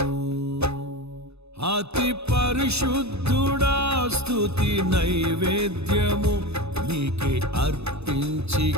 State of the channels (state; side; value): late; left; 0.79 ms